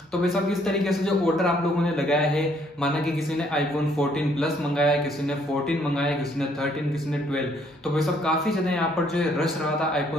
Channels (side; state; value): both; normal; correlation 0.66